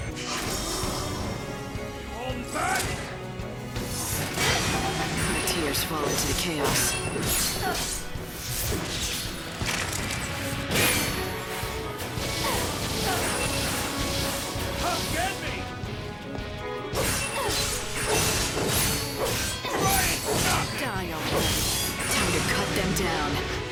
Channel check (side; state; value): both; identical; correlation 1.00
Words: Hold back! My tears fall into the chaos. Come get me! Die already. Time to cut them down.